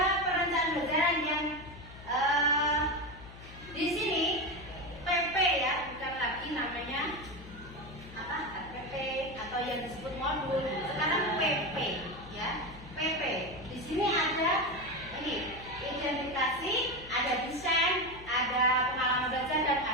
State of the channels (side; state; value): left; noise; hum, 16 dB below the sound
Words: perencanaan pembelajaran yang di sini PP ya, bukan lagi namanya apa PP atau yang disebut modul. Sekarang PP ya, PP. Di sini ada ini identifikasi, ada desain, ada pengalaman belajar dan